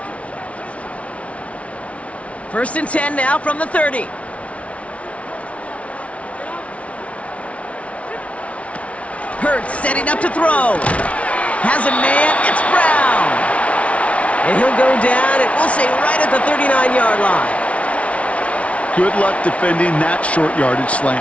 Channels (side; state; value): right; late; 0.064 ms